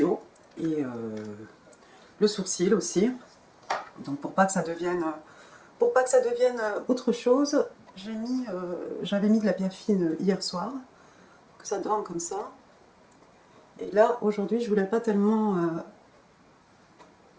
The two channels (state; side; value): identical; both; correlation 1.00